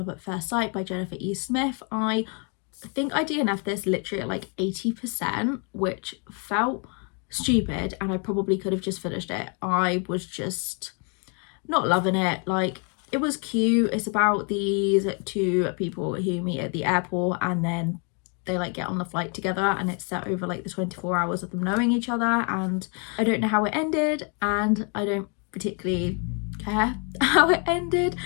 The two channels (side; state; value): right; quieter; 37.5 dB